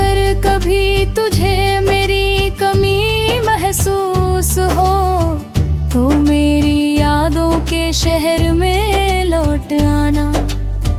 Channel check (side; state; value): both; identical; correlation 1.00